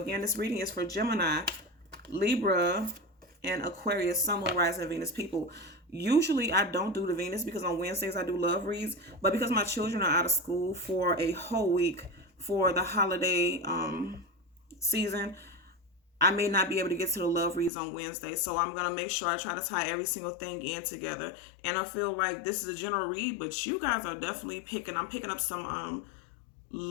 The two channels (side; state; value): right; drops out; at 17.7 s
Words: again, this reading is for Gemini, Libra, and Aquarius, Sun, Moon, Rising, and Venus people. Usually I don't do the Venus because on Wednesdays I do love reads, but because my children are out of school for a whole week for the holiday season, I may not be able to get to the love reads on Wednesday. So I'm going to make sure I try to tie every single thing in together. And I feel like this is a general read, but you guys are definitely I'm picking up some